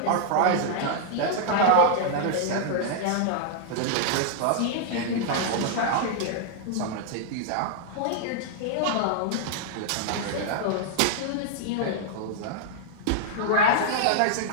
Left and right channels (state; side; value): different; both; correlation -0.01